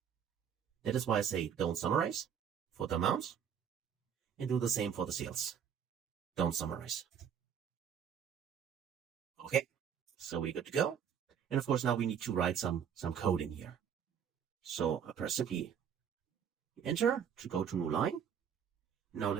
That is why I say don't summarize for the amount and do the same for the sales. Don't summarize. Okay, so we're good to go. And of course, now we need to write some code in here. So I press simply enter to go to new line. Now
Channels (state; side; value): quieter; left; 8.1 dB